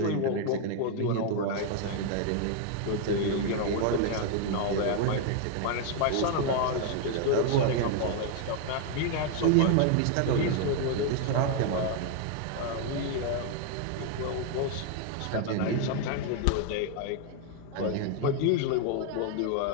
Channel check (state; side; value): different; both; correlation 0.00